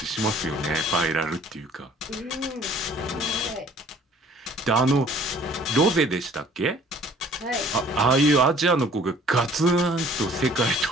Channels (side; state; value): both; normal; correlation 0.54